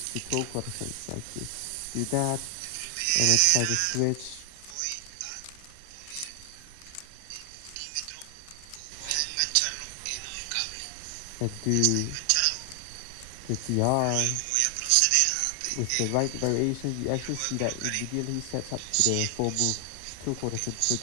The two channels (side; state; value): both; different; correlation 0.00